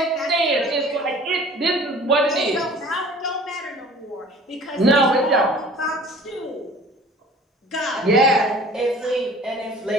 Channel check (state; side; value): normal; both; correlation 0.47